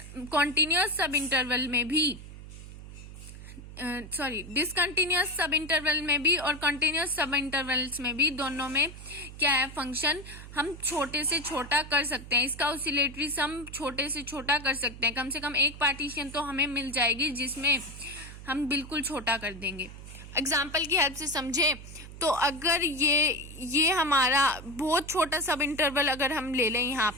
कॉन्टिन्यूअस सब इंटरवल में भी, डिसकंटिन्यूअस सब इंटरवल में भी और कंटिन्यूअस सब इंटरवल्स में भी, दोनों में क्या है फंक्शन हम छोटे से छोटा कर सकते हैं, इसका ऑसिलेटरी सम छोटे से छोटा कर सकते हैं। कम से कम एक पार्टीशन तो हमें मिल जाएगी जिसमें हम बिल्कुल छोटा कर देंगे। एग्जाम्पल की हेल्प से समझे तो अगर ये हमारा बहुत छोटा सब इंटरवल अगर हम ले लें यहाँ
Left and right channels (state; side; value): noise; right; hum, 14 dB below the sound